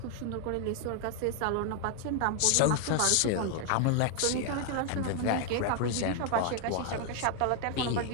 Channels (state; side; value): different; both; correlation 0.01